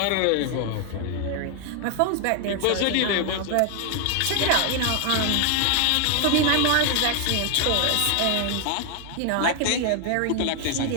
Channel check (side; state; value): both; different; correlation 0.00